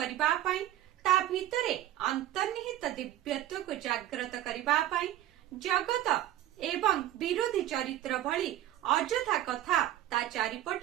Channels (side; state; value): left; quieter; 13.5 dB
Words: पाई ता भितरे अंतर्निहित दिव्यत्व को जागृत करिबा पाई जगत एवं विरोधी चरित्र भली अजथा कथा ता